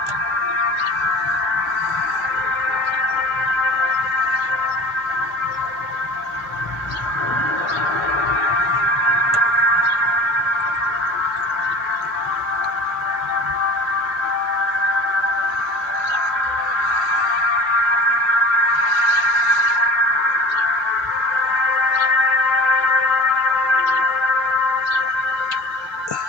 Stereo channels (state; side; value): normal; both; correlation 0.40